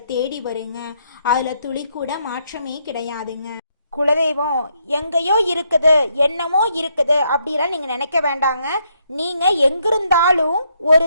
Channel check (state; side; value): inverted; both; correlation -0.75